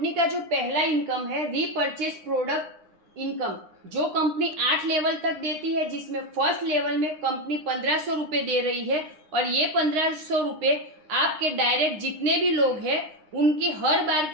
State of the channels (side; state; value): left; late; 9.7 ms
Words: का जो पहला इनकम है रीपर्चेस प्रोडक्ट इनकम, जो कंपनी 8 लेवल तक देती है, जिसमें फर्स्ट लेवल में कंपनी 1500 रुपये दे रही है। और ये 1500 रुपये आपके डायरेक्ट जितने भी लोग हैं उनकी हर बार